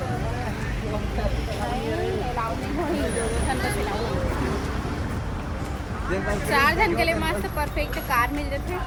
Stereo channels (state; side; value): identical; both; correlation 1.00